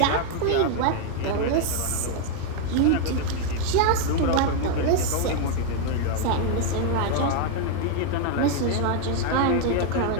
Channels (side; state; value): both; different; correlation 0.00